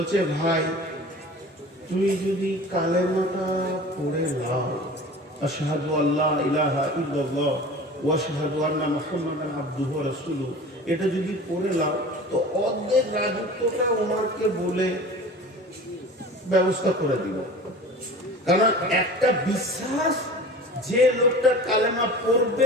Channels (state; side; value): normal; both; correlation 0.39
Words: ভাই তুই যদি কালেমাটা পড়ে নাও, আশহাদু আল্লা ইলাহা ইল্লাল্লাহ ওয়া আশহাদু আন্না মুহাম্মাদান আবদুহু ওয়া রাসূলুহু, এটা যদি পড়ে নাও তো অর্ধেক রাজত্বটা ওমরকে বলে ব্যবস্থা করে দিব। কারণ একটা বিশ্বাস, যে লোকটা কালেমা পড়বে